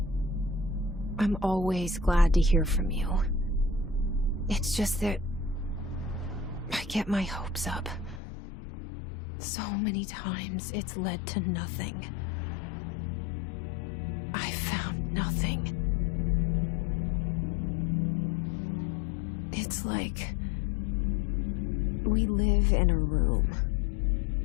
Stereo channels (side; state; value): right; drops out; at 8.2 s